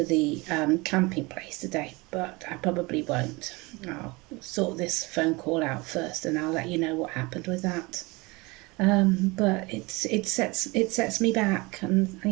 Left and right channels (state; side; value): quieter; left; 24.7 dB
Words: the camping place today, but I probably won't. I'll sort this phone call out first, and I'll let you know what happened with that. But it sets me back,